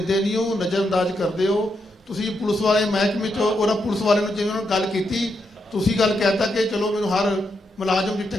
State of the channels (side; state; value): both; normal; correlation 0.82